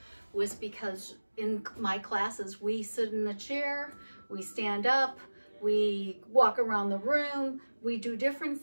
was because in my classes, we sit in the chair, we stand up, we walk around the room, we do different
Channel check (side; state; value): both; inverted; correlation -1.00